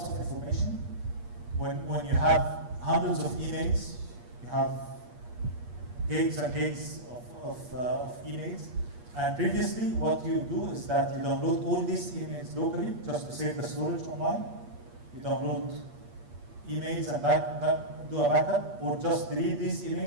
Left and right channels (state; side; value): late; left; 8.4 ms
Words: of information. When you have hundreds of emails, you have gigs and gigs of emails. And previously, what you do is that you download all these emails locally just to save the storage online. You download emails and do a backup, or just delete these